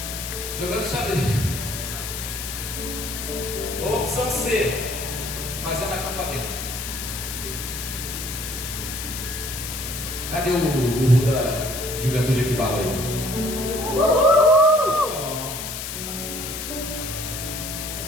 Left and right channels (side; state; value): left; noise; hiss, 6 dB below the sound